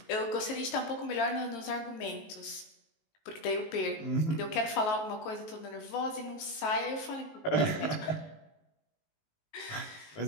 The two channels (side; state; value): right; late; 19 ms